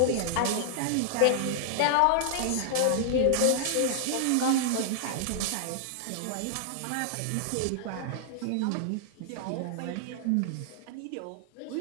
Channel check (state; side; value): different; both; correlation -0.01